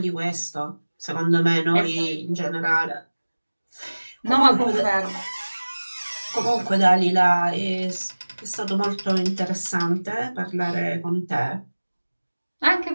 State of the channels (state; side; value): inverted; both; correlation -1.00